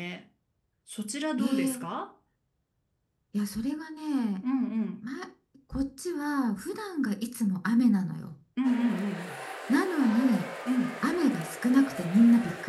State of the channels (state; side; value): identical; both; correlation 1.00